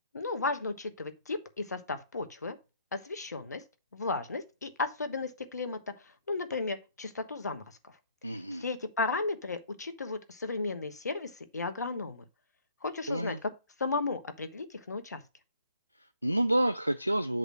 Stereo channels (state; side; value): inverted; both; correlation -0.66